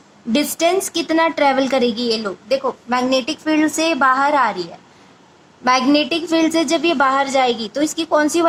Distance कितना travel करेगी ये लोग? देखो मैग्नेटिक फील्ड से बाहर आ रही है. मैग्नेटिक फील्ड से जब ये बाहर जाएगी तो इसकी कौन सी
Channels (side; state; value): both; identical; correlation 1.00